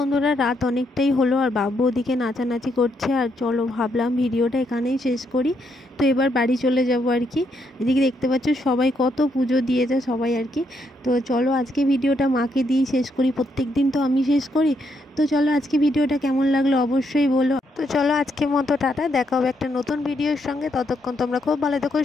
রাত অনেকটাই হলো, আর বাবু ওদিকে নাচানাচি করছে, আর চলো ভাবলাম ভিডিওটা এখানেই শেষ করি। তো এবার বাড়ি চলে যাব আর কি। এদিকে দেখতে পাচ্ছ সবাই কত পুজো দিয়েছে সবাই আর কি। তো চলো আজকে ভিডিওটা মাকে দিয়েই শেষ করি, প্রত্যেক দিন তো আমি শেষ করি। তো চলো আজকে ভিডিওটা কেমন লাগলো অবশ্যই বলো। তো চলো আজকের মতো টাটা, দেখা হবে একটা নতুন ভিডিওর সঙ্গে। ততক্ষণ তোমরা খুব ভালো থেকো,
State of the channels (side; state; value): both; normal; correlation 0.76